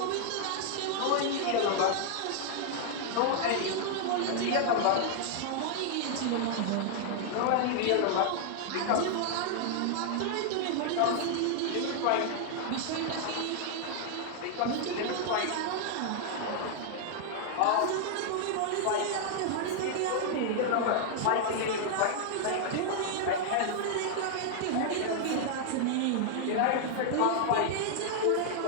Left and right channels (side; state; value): both; different; correlation -0.01